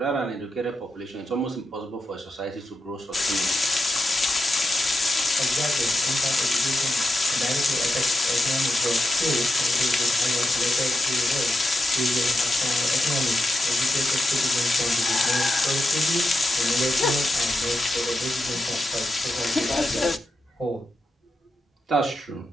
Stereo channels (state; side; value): normal; both; correlation 0.87